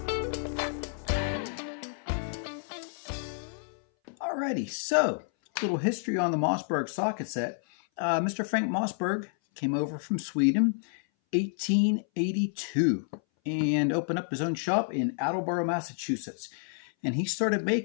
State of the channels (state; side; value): silent; right; 58 dB below the other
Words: Alrighty, so a little history on the Mossberg socket set. Mr. Frank Mossberg came over from Sweden 1882 and opened up his own shop in Attleboro, Massachusetts. And he started